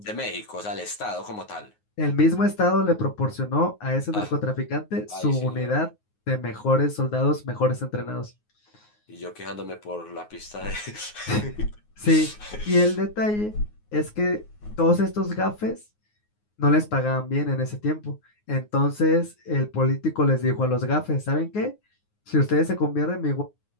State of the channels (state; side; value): late; right; 9.5 ms